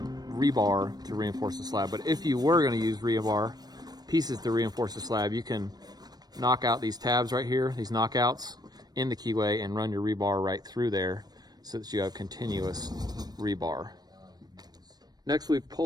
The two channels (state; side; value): late; left; 0.19 ms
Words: rebar to reinforce the slab, but if you were going to use rebar pieces to reinforce the slab, you can knock out these tabs right here, these knockouts in the keyway, and run your rebar right through there so that you have continuous rebar. Next, we've